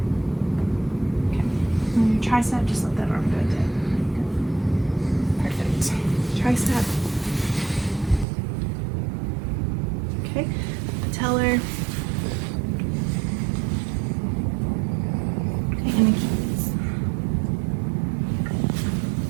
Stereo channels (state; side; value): drops out; left; at 8.2 s